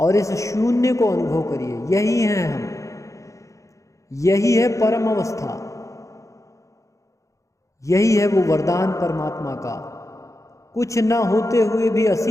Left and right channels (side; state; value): right; late; 0.15 ms